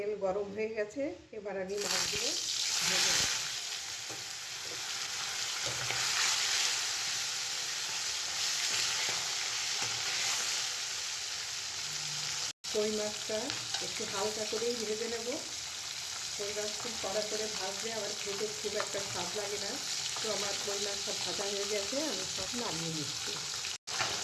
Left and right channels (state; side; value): identical; both; correlation 1.00